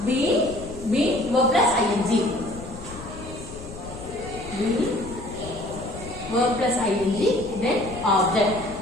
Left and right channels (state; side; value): noise; left; rumble, 14 dB below the sound